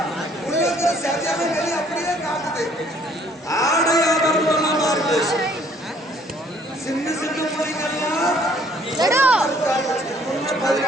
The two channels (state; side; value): normal; both; correlation 0.61